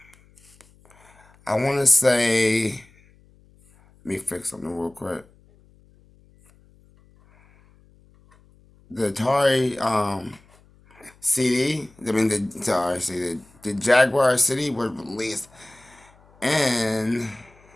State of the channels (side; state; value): left; noise; hum, 29 dB below the sound